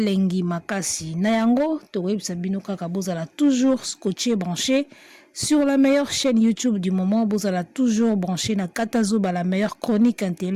makasi. Na yango, to websa bino kaka bozala toujours scotché branché. Sur la meilleure chaîne YouTube du moment, vous allez toujours brancher na Katazoba, la meilleure chronique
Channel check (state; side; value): identical; both; correlation 1.00